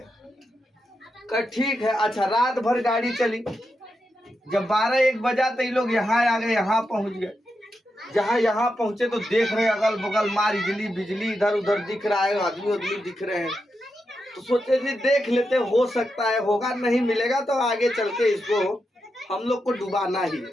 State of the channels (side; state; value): both; normal; correlation 0.86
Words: का ठीक है, अच्छा रात भर गाड़ी चली, जब 12-1 बजा तो ये लोग यहाँ आ गए, यहाँ पहुँच गए। जहाँ यहाँ पहुँचे तो देख रहे अगल बगल मार बिजली इधर उधर दिख रहा है, आदमी दिख रहे हैं। तो सोचे जी देख लेते, हो सकता है होगा, नहीं मिलेगा तो आगे चल के इसको हम लोग को डुबाना ही।